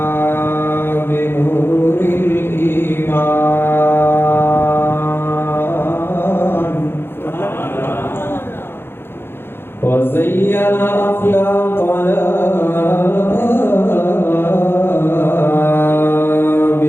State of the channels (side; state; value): right; late; 0.11 ms